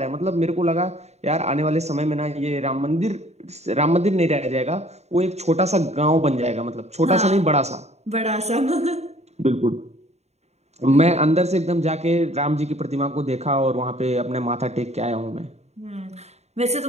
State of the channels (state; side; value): late; left; 0.32 ms